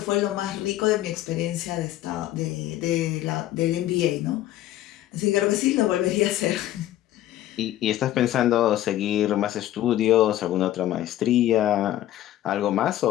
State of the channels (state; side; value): quieter; right; 13.6 dB